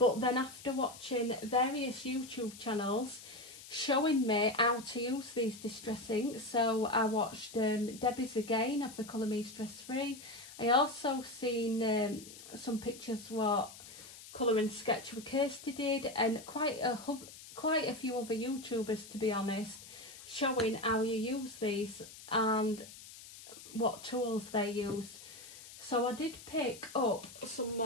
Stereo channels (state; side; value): noise; left; hiss, 16 dB below the sound